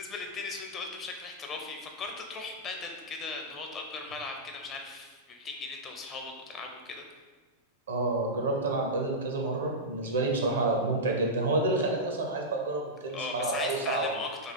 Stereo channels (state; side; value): normal; both; correlation -0.10